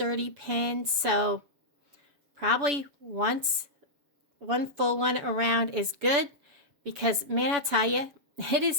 pin, so probably one full one around is good, because man, I'll tell you, it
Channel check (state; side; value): late; left; 7.0 ms